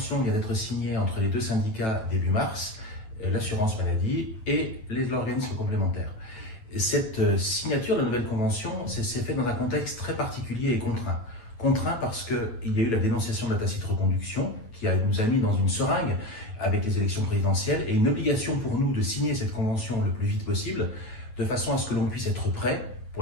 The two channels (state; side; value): late; right; 9.1 ms